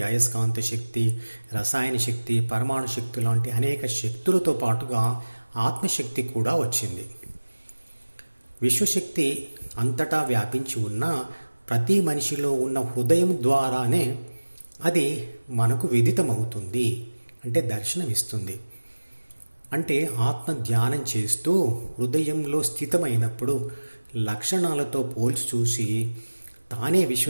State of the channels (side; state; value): both; inverted; correlation -1.00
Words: అయస్కాంత శక్తి, రసాయన శక్తి, పరమాణు శక్తి లాంటి అనేక శక్తులతో పాటుగా ఆత్మశక్తి కూడా వచ్చింది. విశ్వశక్తి అంతటా వ్యాపించి ఉన్న ప్రతి మనిషిలో ఉన్న హృదయం ద్వారానే అది మనకు విదితమవుతుంది, అంటే దర్శనమిస్తుంది. అంటే ఆత్మ ధ్యానం చేస్తూ హృదయంలో స్థితమైనప్పుడు లక్షణాలతో పోల్చి చూసి తానే